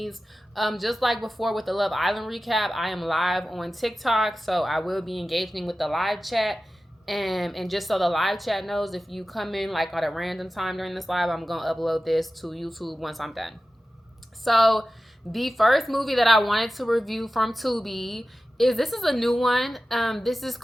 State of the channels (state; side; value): normal; both; correlation 0.95